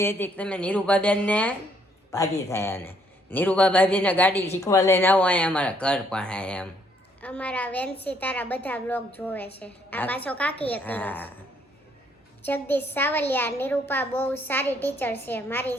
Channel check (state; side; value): normal; both; correlation 0.68